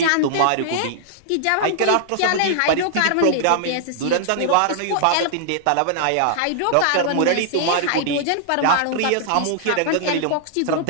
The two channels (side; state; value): both; different; correlation -0.01